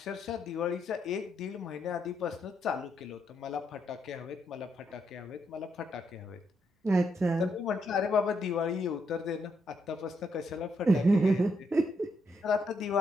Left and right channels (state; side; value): normal; both; correlation 0.78